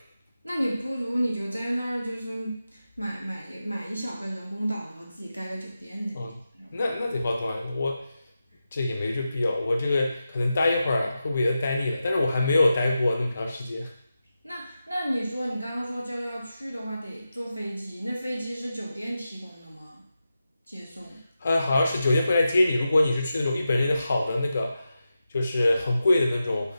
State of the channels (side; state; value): both; inverted; correlation -0.91